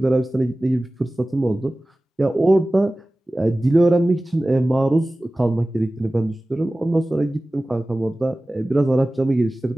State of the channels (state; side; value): normal; both; correlation 0.97